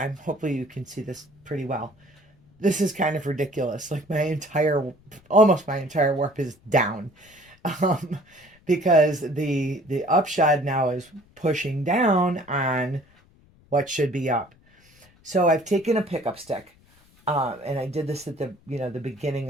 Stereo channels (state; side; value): noise; left; rumble, 30 dB below the sound